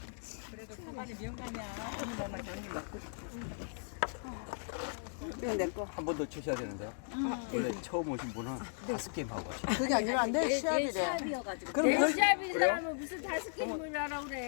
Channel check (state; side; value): silent; right; digital silence